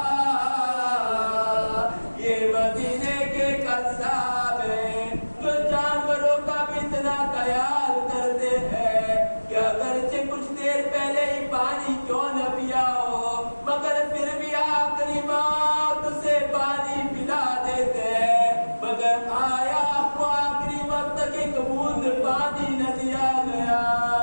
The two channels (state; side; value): inverted; both; correlation -1.00